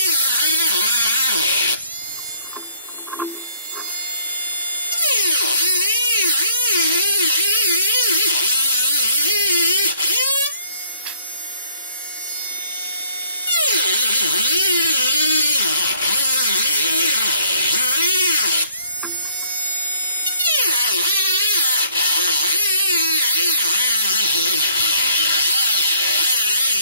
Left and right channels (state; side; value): inverted; both; correlation -0.63